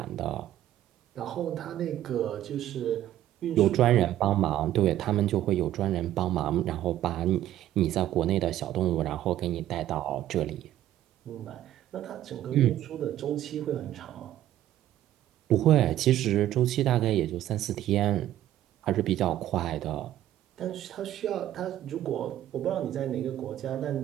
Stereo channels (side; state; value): left; quieter; 12.8 dB